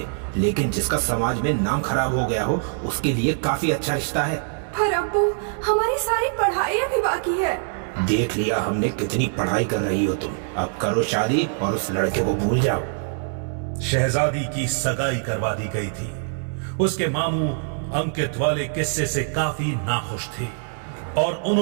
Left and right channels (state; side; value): silent; left; 62 dB below the other